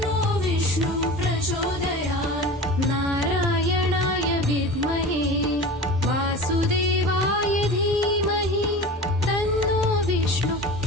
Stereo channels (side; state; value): both; normal; correlation 0.34